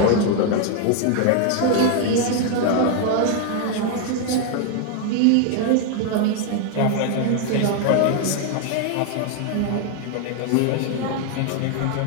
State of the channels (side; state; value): both; different; correlation 0.00